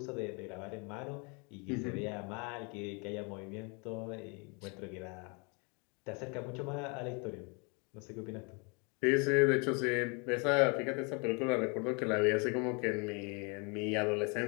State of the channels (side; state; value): right; quieter; 32.7 dB